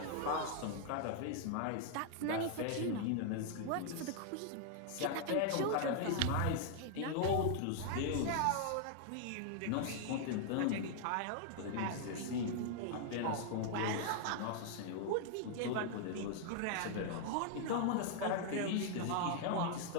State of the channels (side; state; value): both; different; correlation 0.00